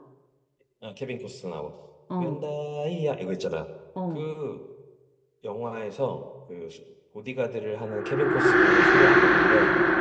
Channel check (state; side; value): identical; both; correlation 1.00